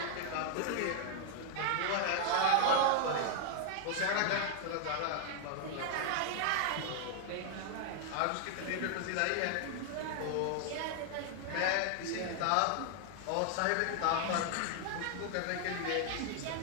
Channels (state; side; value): different; both; correlation 0.00